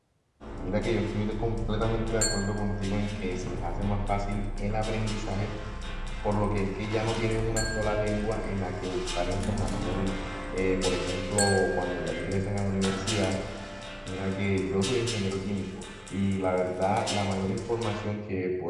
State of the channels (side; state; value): both; identical; correlation 1.00